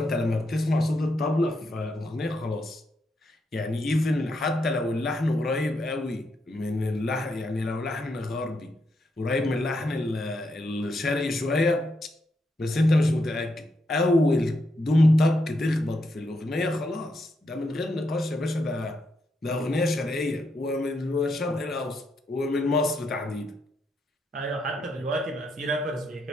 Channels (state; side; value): normal; both; correlation 0.80